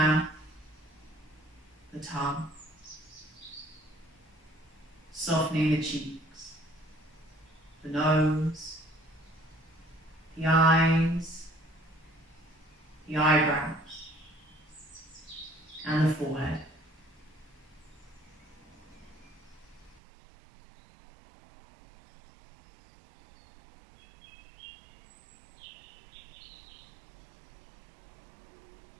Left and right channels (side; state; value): left; drops out; at 20.0 s